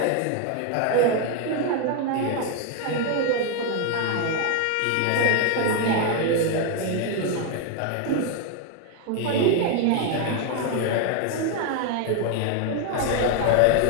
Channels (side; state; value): both; different; correlation 0.01